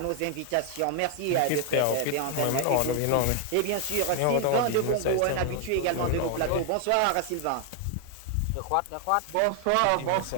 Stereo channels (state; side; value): different; both; correlation 0.00